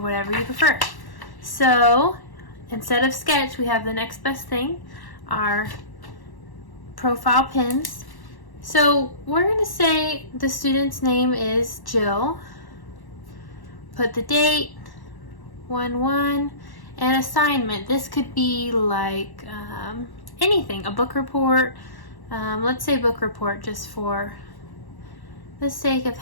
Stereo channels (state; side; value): late; right; 1.1 ms